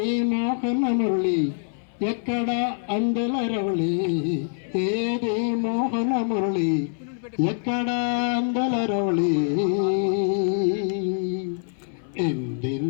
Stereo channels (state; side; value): silent; right; 59 dB below the other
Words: మోహన మురళి, ఎక్కడ అందెల రవళి, ఏది మోహన మురళి, ఎక్కడ అందెల రవళి,